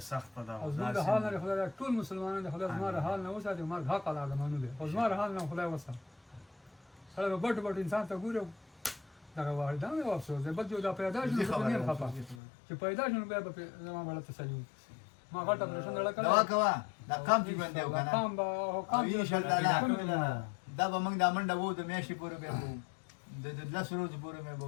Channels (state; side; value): drops out; right; at 12.4 s